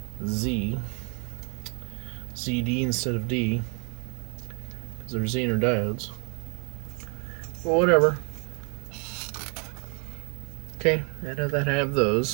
ZD instead of D, because they're Zener diodes. Well, whatever. Okay, I know that I have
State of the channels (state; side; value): quieter; left; 35.7 dB